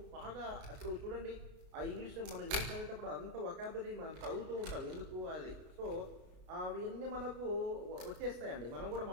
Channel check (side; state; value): left; late; 32 ms